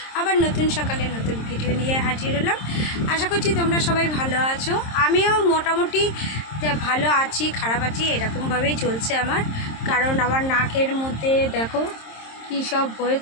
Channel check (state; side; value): late; right; 26 ms